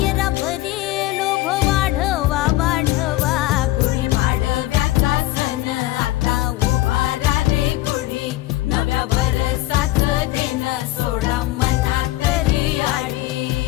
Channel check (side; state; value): right; quieter; 17.0 dB